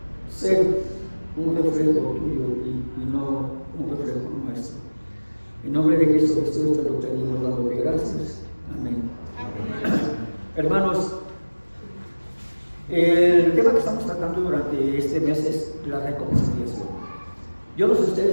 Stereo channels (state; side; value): inverted; both; correlation -1.00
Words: ser un reflejo tuyo y no un reflejo nuestro. En nombre de Cristo Jesús te lo pedimos dándote gracias. Amén. Hermanos, el tema que estamos tratando durante este mes es la reconciliación. Yo no sé